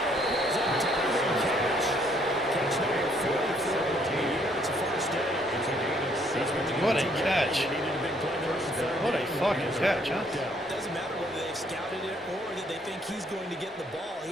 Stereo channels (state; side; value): normal; both; correlation 0.66